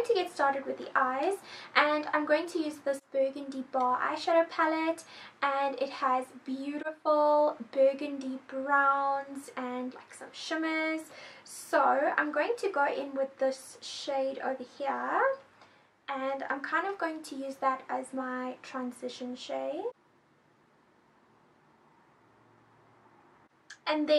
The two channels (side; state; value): both; identical; correlation 1.00